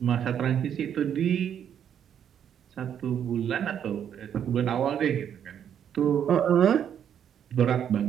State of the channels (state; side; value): quieter; left; 9.0 dB